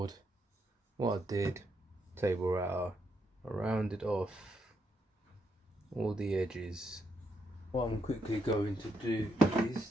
What I did, table router, I rounded off all the edges. What I'm quickly going to do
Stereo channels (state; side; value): normal; both; correlation 0.79